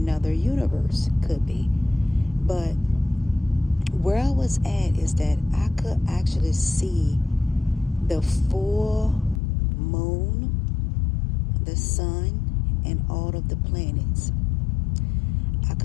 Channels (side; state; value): right; drops out; at 9.4 s